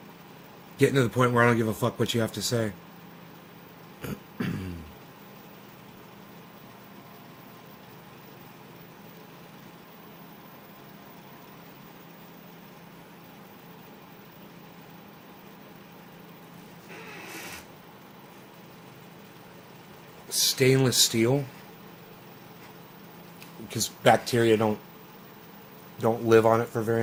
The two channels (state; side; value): identical; both; correlation 1.00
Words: Getting to the point where I don't give a fuck what you have to say. Stainless steel, because bacteria don't live on it for very